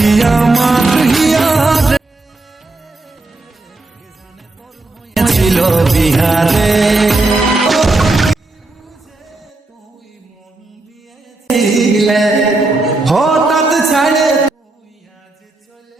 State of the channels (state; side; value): quieter; left; 3.1 dB